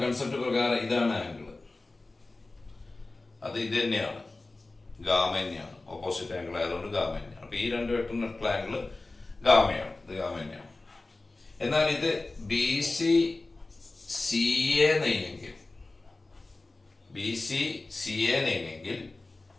കൺസെപ്റ്റ് പ്രകാരം ഇതാണ് ആംഗിൾ. അത് ഇത് തന്നെയാണ്, ഗാമ തന്നെയാണ്. ഓപ്പോസിറ്റ് ആംഗിൾ ആയതുകൊണ്ട് ഗാമ തന്നെയാണ്. അപ്പൊ ഈ രണ്ട് വെക്ടറിനുള്ള ആംഗിൾ ഗാമയാണ്, ഇത് ഗാമ തന്നെയാണ്. എന്നാൽ ഇത് BC CA നെയ്യെങ്കിൽ, BC CA നെയ്യെങ്കിൽ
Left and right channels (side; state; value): right; quieter; 3.2 dB